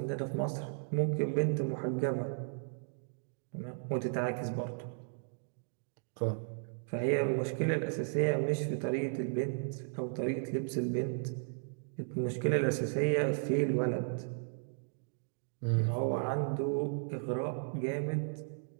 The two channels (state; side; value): silent; left; digital silence